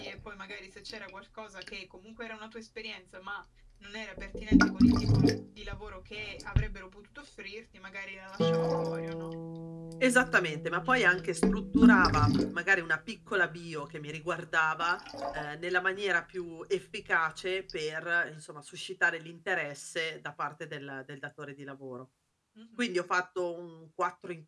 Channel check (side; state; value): both; identical; correlation 1.00